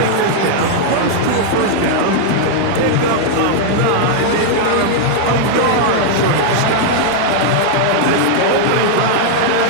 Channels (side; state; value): both; different; correlation -0.01